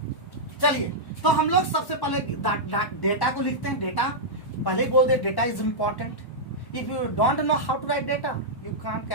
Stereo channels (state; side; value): late; right; 1.1 ms